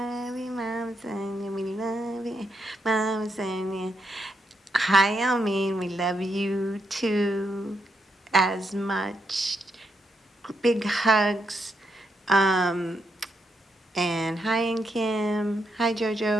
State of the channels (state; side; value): normal; both; correlation 0.80